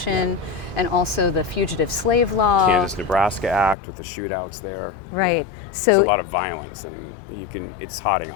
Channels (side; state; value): right; drops out; at 3.8 s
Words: and also the Fugitive Slave Law. Kansas-Nebraska Act with the shootouts there. Right. There's a So lot of violence and it's hotting